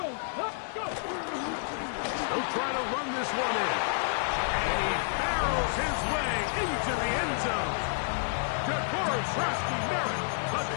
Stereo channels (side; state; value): right; silent; digital silence